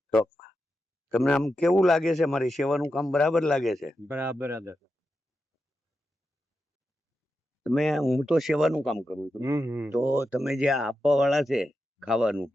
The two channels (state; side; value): normal; both; correlation 0.88